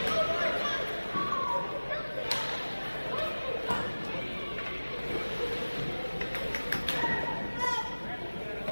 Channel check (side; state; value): both; inverted; correlation -1.00